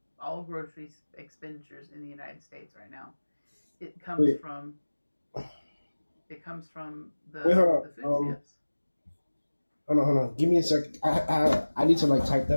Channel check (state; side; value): inverted; both; correlation -1.00